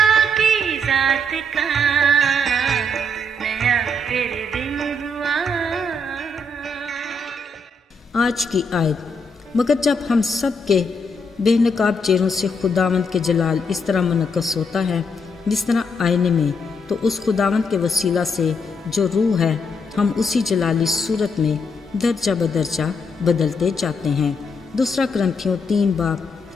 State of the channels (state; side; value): normal; both; correlation 0.76